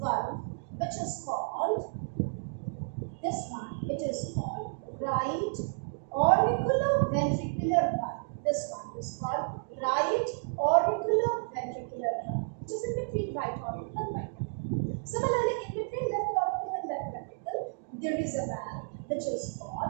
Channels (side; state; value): left; silent; digital silence